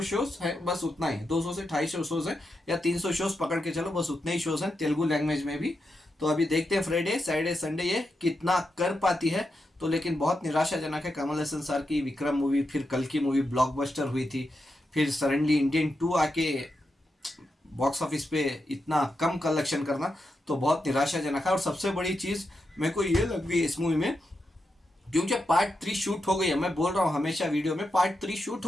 शोज है, बस उतना ही, 200 से 250 शोज है, या 300 शोज पकड़ के चलो, बस उतने ही शोज हैं तेलुगु लैंग्वेज में भी। तो अभी देखते हैं फ्राइडे, सैटरडे, संडे ये कितना कर पाती है। तो लेकिन बहुत निराशाजनक है। कमल हसन सर की विक्रम मूवी, फिर कल की मूवी ब्लॉकबस्टर हुई थी, फिर सडनली इंडियन 2 आके बॉक्स ऑफिस पे इतना कम कलेक्शन करना, तो बहुत निराशाजनक है। और सबसे बड़ी चीज मेरे को ये लग रही है इस मूवी में, क्योंकि पार्ट 3 शूट हो गई है, मैं बोल रहा हूँ हमेशा वीडियो में, पार्ट 3 शूट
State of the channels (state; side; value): normal; both; correlation 0.86